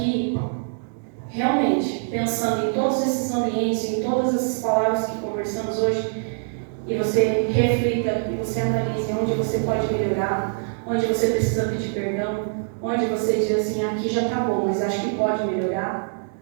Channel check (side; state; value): left; silent; digital silence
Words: realmente pensando em todos esses ambientes, em todas essas palavras que conversamos hoje, e você reflita e você analise onde você pode melhorar, onde você precisa pedir perdão, onde você diz assim, aqui já está bom, mas acho que pode melhorar,